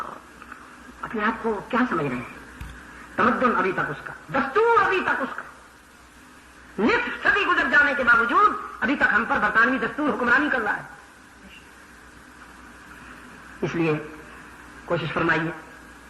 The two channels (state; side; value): identical; both; correlation 1.00